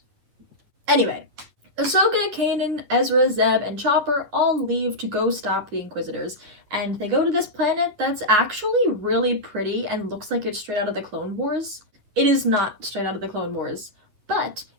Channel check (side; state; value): left; late; 10 ms